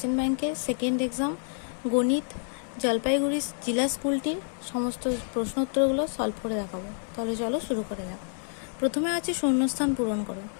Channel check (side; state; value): right; silent; 59 dB below the other